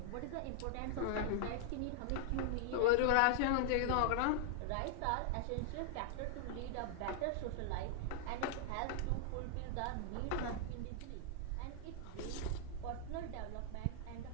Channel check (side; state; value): both; different; correlation 0.00